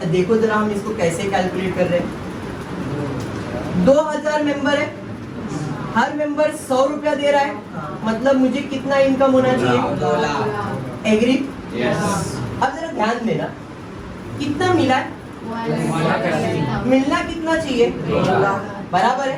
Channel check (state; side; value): identical; both; correlation 1.00